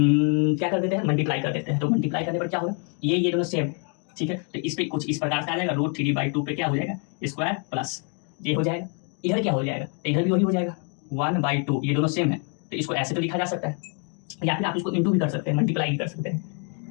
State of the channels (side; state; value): right; quieter; 39.8 dB